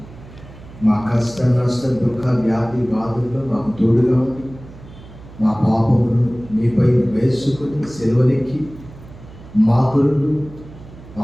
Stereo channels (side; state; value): right; noise; hum, 18 dB below the sound